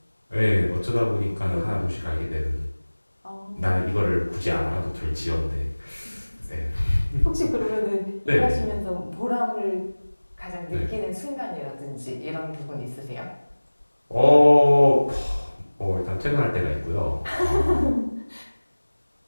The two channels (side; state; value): both; inverted; correlation -1.00